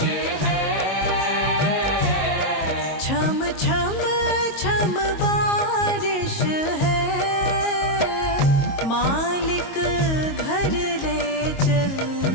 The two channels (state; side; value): late; right; 22 ms